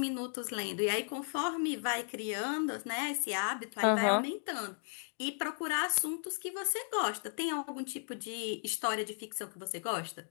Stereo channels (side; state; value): right; silent; 54 dB below the other